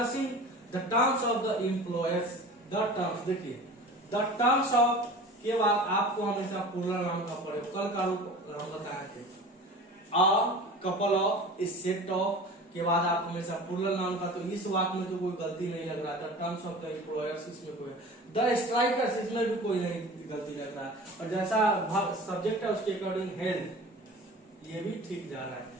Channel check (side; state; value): both; normal; correlation 0.39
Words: the terms of the employers. The terms, देखिए, द टर्म्स ऑफ के बाद आपको हमेशा प्लूरल नाउन का प्रयोग, कल का रूप हम बताए थे। A couple of, A set of के बाद आप हमेशा प्लूरल नाउन का, तो इस वाक्य में तो कोई गलती नहीं लग रहा था। टर्म्स ऑफ द एम्प्लॉयर्स इसमें कोई, द स्ट्राइकर्स इसमें भी कोई नहीं गलती लग रहा है। और जैसा सब्जेक्ट है उसके अकॉर्डिंग हेल्ड, ये भी ठीक जा रहा है।